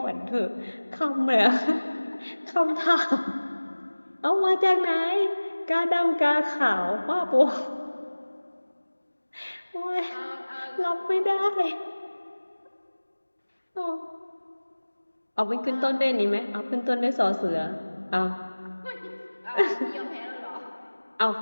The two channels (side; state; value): both; inverted; correlation -1.00